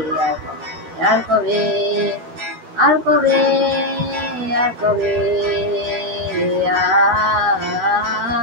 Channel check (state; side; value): late; left; 12 ms